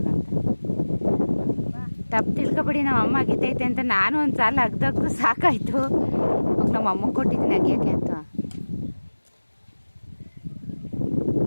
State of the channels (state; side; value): inverted; both; correlation -1.00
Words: ಅಂತ. ತಪ್ಪು ತಿಳ್ಕೊಬೇಡಿ, ನಮ್ಮ ಅಮ್ಮ ಅಗಿತೈತೆ ಅಂತ. ನಾನು ಒಂದು ಸಾಲ ಅಗ್ದು ಸಾಕಾಯಿತು, ನಮ್ಮ ಅಮ್ಮಂಗೆ ಕೊಟ್ಟಿದ್ದೀನಿ ಅಗಿಯೋಕ್ಕೆ ಅಂತ.